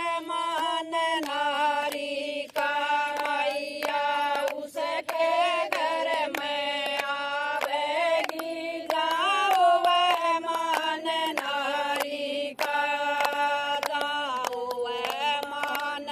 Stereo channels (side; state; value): both; identical; correlation 1.00